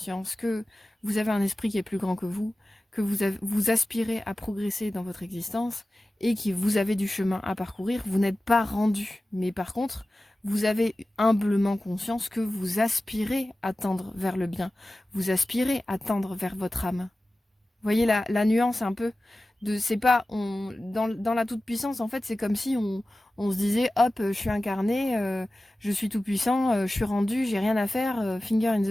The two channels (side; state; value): both; normal; correlation 0.95